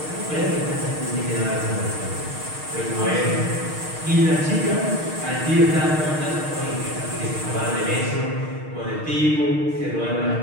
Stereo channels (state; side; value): late; left; 6.5 ms